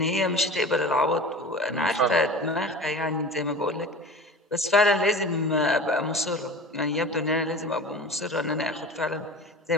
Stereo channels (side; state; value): both; normal; correlation 0.36